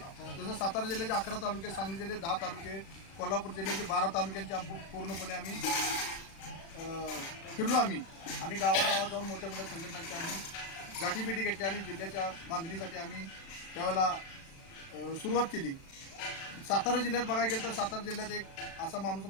जसं सातारा जिल्ह्याचे 11 तालुके, सांगली जिल्ह्याचे 10 तालुके, कोल्हापूर जिल्ह्याचे 12 तालुक्यांचे पूर्णपणे आम्ही फिरलो आम्ही आणि गावागावात जाऊन मोठ्या मोठ्या संघटनांची आम्ही गाठीभेटी घेतली आणि जिल्ह्याच्या बांधणीसाठी आम्ही त्यावेळेला सुरुवात केली. सातारा जिल्ह्यात बघायला गेलं तर सातारा जिल्ह्यात एक असा माणूस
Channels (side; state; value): right; late; 36 ms